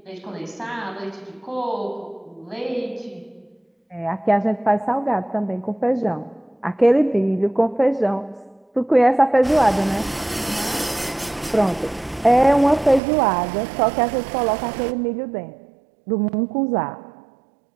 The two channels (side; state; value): left; drops out; at 13.0 s